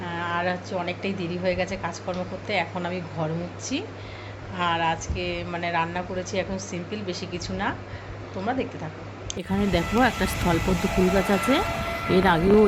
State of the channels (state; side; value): identical; both; correlation 1.00